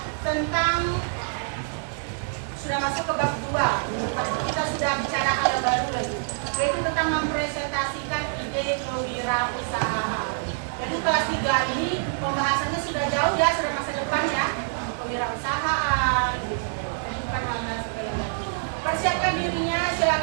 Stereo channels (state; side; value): silent; left; 61 dB below the other